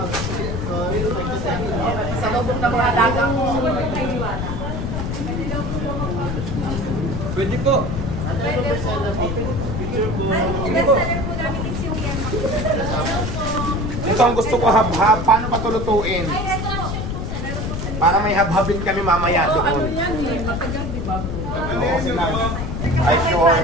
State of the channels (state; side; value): noise; left; rumble, 3 dB below the sound